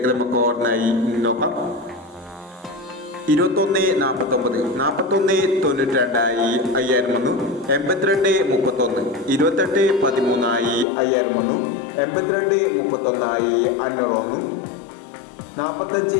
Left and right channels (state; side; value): drops out; right; at 10.9 s